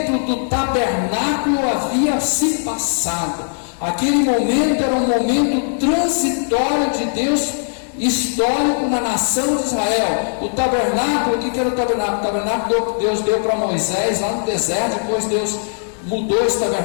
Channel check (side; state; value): right; silent; digital silence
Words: do tabernáculo havia se passado. Aquele momento era um momento transitório de Deus, histórico na nação de Israel. O tabernáculo, o que era o tabernáculo? O tabernáculo Deus deu para Moisés lá no deserto, depois Deus mudou esse